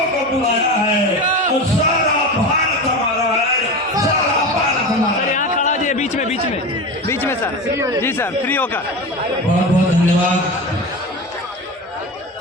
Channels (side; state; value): both; normal; correlation 0.26